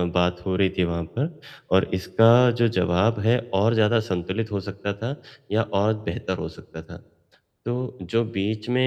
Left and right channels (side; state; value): both; identical; correlation 1.00